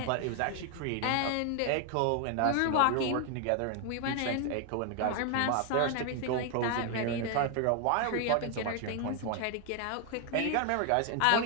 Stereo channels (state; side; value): different; both; correlation 0.01